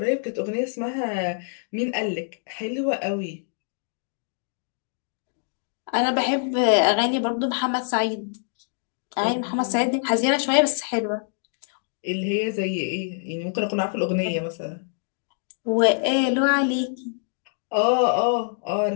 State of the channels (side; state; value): right; silent; digital silence